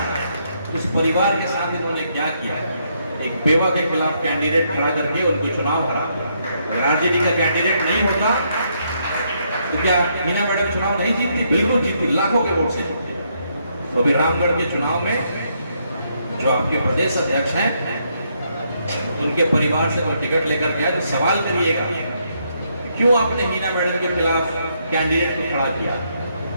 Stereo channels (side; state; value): both; inverted; correlation -0.75